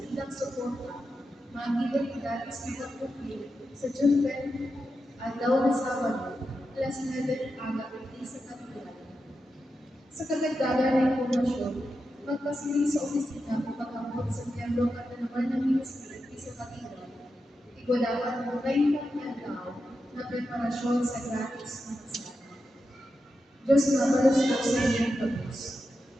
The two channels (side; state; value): both; normal; correlation 0.89